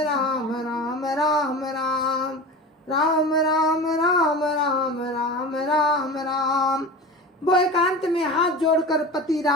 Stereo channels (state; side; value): normal; both; correlation 0.31